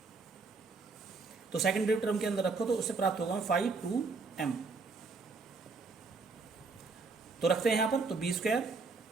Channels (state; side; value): quieter; left; 4.2 dB